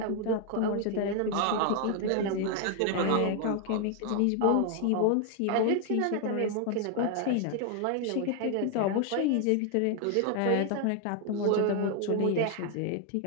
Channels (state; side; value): different; both; correlation 0.00